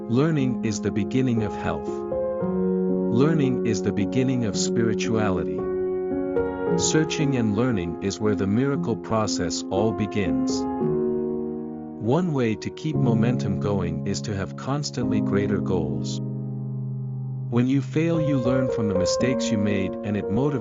Learning is the beginning of health. Learning is the beginning of spirituality. Searching and learning is where the miracle process all begins. One way to keep momentum going is to have constantly greater goals. When you fail, you learn from the mistakes you made, and it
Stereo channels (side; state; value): both; identical; correlation 1.00